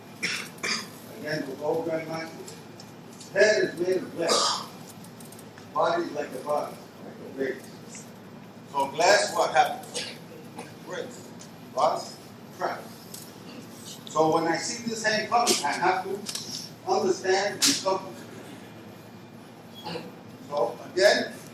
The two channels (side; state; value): both; identical; correlation 1.00